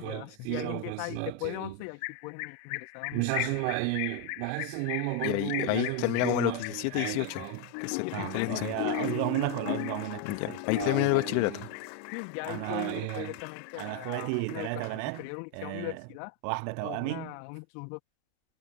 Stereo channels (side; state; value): both; different; correlation 0.01